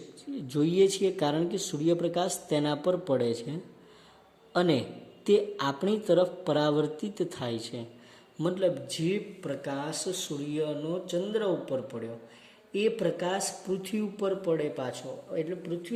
જોઈએ છીએ કારણ કે સૂર્યપ્રકાશ તેના પર પડે છે અને તે આપણી તરફ પરાવર્તિત થાય છે. મતલબ જે પ્રકાશ સૂર્યનો ચંદ્ર ઉપર પડ્યો એ પ્રકાશ પૃથ્વી ઉપર પડે પાછો, એટલે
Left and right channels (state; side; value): identical; both; correlation 1.00